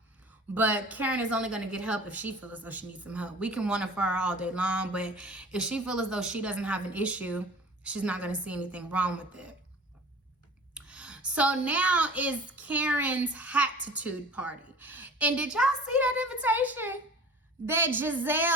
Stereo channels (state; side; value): normal; both; correlation 0.43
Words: But Karen is only going to get help if she feels as though she needs some help. We can wonder for her all day long, but if she feels as though she doesn't have an issue, she's not going to see anything wrong with it. So now is Karen's Hatitude party. And did y'all see that invitation that